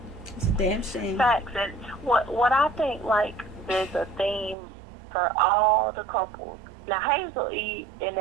It's a damn shame. Facts. And what I think, like, there's a theme for all the couples. Now, Hazel E and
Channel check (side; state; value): left; drops out; at 4.5 s